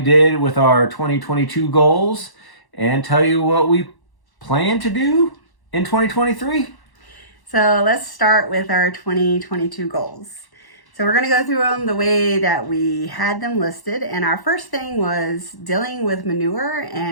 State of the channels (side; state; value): right; late; 1.1 ms